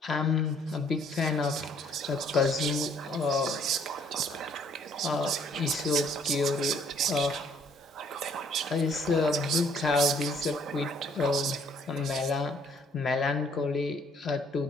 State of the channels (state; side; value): normal; both; correlation 0.63